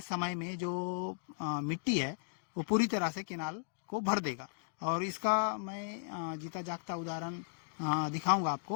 समय में जो मिट्टी है वो पूरी तरह से केनाल को भर देगा। और इसका मैं जीता जागता उदाहरण दिखाऊंगा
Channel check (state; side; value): silent; right; digital silence